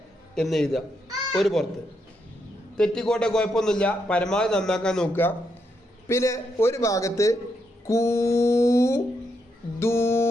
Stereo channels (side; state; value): both; normal; correlation 0.80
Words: എന്ന് എഴുതുക. ഒരു പുറത്ത് തെറ്റിക്കോട്ടെ, കുഴപ്പമൊന്നുമില്ല. പരമാവധി നന്നാക്കാൻ നോക്കുക. പിന്നെ ഒരു ഭാഗത്ത് കൂ, ദൂ,